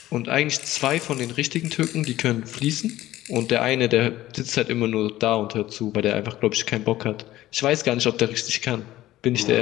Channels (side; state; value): right; quieter; 15.2 dB